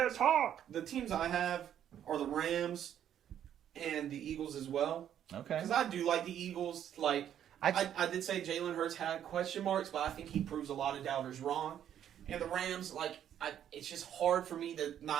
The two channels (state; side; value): quieter; left; 10.1 dB